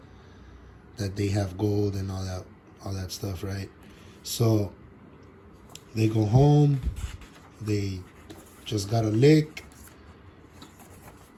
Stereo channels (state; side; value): identical; both; correlation 1.00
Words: they have gold and all that stuff, right? So they go home. They just got a lick,